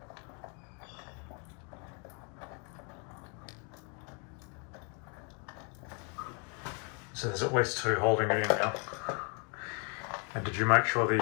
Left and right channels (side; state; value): right; quieter; 36.7 dB